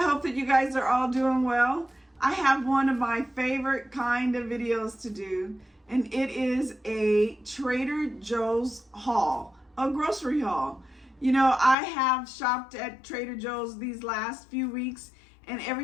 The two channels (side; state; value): right; drops out; at 11.8 s